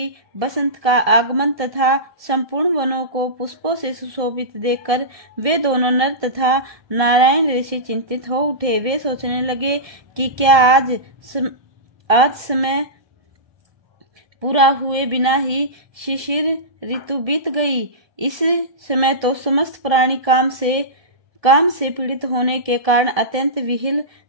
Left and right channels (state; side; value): late; left; 1.7 ms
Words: बसंत का आगमन तथा संपूर्ण वनों को पुष्पों से सुशोभित देखकर वे दोनों नर तथा नारायण ऋषि चिंतित हो उठे। वे सोचने लगे कि क्या आज समय पूरा हुए बिना ही शिशिर ऋतु बीत गई। इस समय तो समस्त प्राणी काम से पीड़ित होने के कारण अत्यंत विहिल